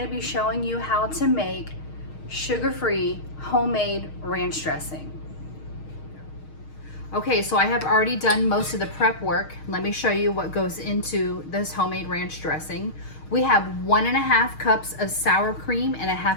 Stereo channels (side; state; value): right; late; 6.4 ms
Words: to be showing you how to make sugar-free homemade ranch dressing. Okay, so I have already done most of the prep work. Let me show you what goes into this homemade ranch dressing. We have 1.5 cups of sour cream and